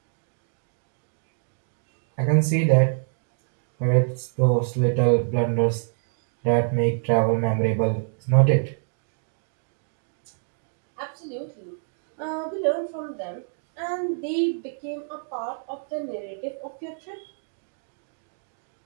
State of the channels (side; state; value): left; silent; digital silence